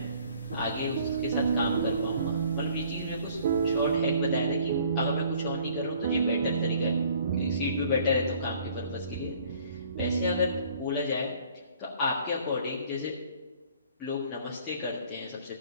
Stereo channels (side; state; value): both; inverted; correlation -0.56